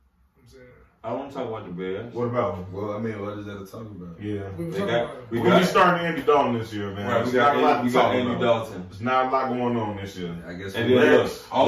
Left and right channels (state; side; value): identical; both; correlation 1.00